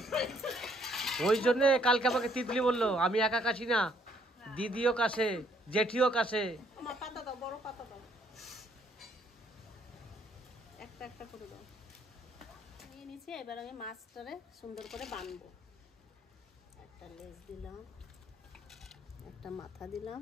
ওই জন্য কালকে আমাকে তিতলি বললো আমি একা কাশি না, দিদিও কাশে, জেঠিও কাশে। আমার পাতা দাও, বড় পাতা দাও, একটা একটা করে দাও। নিয়ে নিচ্ছি, এবার আমি মাছটারে সুন্দর করে বানবো। একটা লেজ দিলাম, একটা মাথা দিলাম,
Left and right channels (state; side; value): normal; both; correlation 0.67